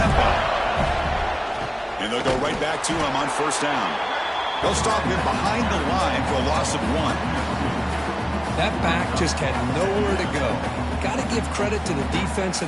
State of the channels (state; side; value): identical; both; correlation 1.00